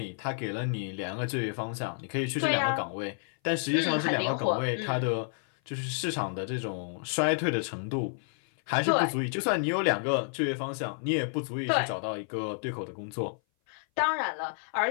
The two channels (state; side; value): silent; right; 56 dB below the other